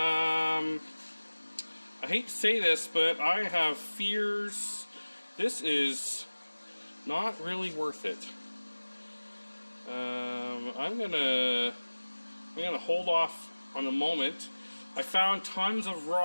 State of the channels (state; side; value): inverted; both; correlation -1.00